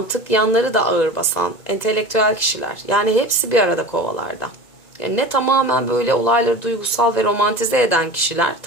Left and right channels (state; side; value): late; right; 1.9 ms